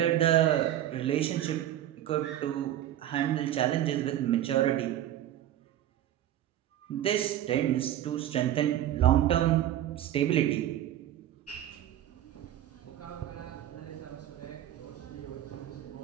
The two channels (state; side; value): quieter; left; 12.1 dB